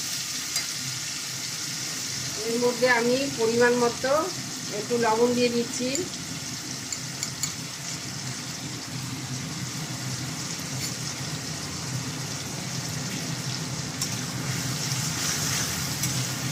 এর মধ্যে আমি পরিমাণ মতো একটু লবণ দিয়ে দিচ্ছি।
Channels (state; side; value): identical; both; correlation 1.00